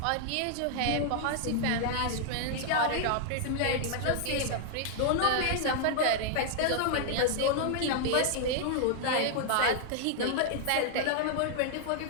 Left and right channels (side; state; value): both; different; correlation 0.00